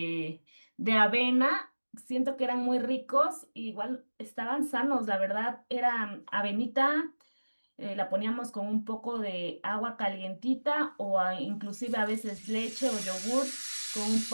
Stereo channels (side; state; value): both; inverted; correlation -1.00